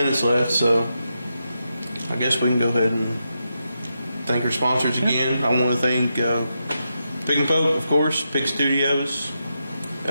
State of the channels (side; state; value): both; inverted; correlation -0.86